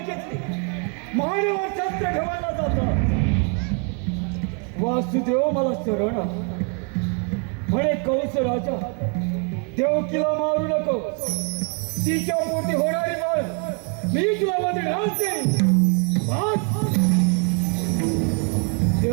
मानेवर शस्त्र ठेवायला जातात. वासुदेव मला शरण म्हणे कंस राजा देवकीला मारू नको. तिच्या पोटी होणारी बाळ मी तुला वधण्यास देईन.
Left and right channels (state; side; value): quieter; left; 37.4 dB